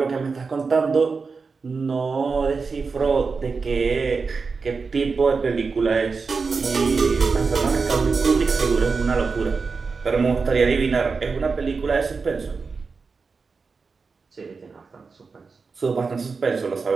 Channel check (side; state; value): left; quieter; 4.7 dB